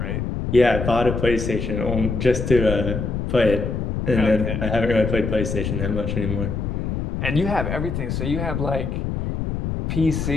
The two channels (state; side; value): noise; left; rumble, 2 dB below the sound